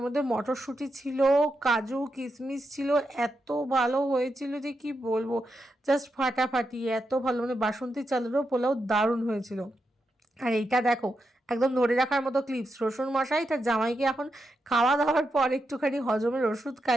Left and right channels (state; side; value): normal; both; correlation 0.85